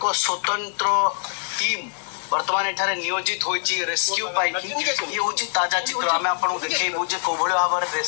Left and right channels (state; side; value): silent; right; 63 dB below the other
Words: स्वतंत्र टीम वर्तमान एठारे नियोजित होइछि रेस्क्यू पाइकी ये हूँ ताजा चित्र आम आपको देखू जे कोभली भाव में